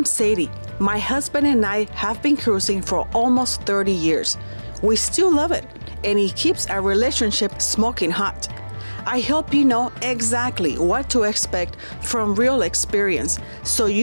Sadie. My husband and I have been cruising for almost 30 years. We still love it, and it keeps our relationship smoking hot. I hope you know exactly what to expect from real experience, so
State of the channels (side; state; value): both; inverted; correlation -1.00